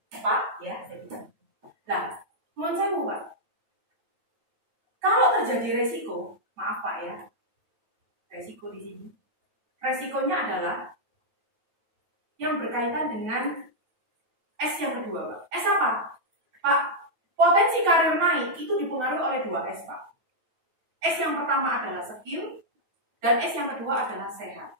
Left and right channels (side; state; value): left; late; 9.2 ms